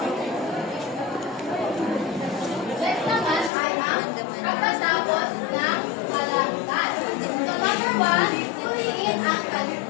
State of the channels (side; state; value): right; drops out; at 3.5 s